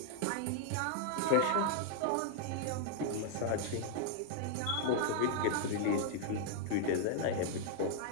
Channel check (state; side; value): different; both; correlation 0.00